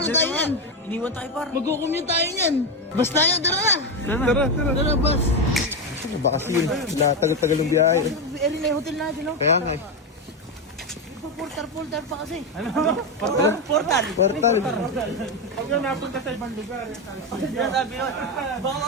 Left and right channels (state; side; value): normal; both; correlation 0.10